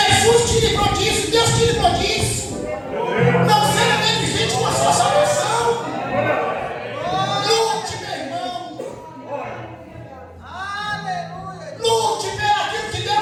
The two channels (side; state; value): both; identical; correlation 1.00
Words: te livrou disso, Deus te livrou disso. Não seja negligente com a sua salvação. Lute, meu irmão. Lute pelo aquilo que